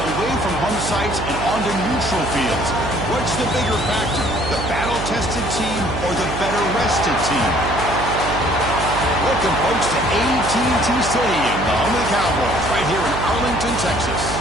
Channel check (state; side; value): noise; right; hum, 6 dB below the sound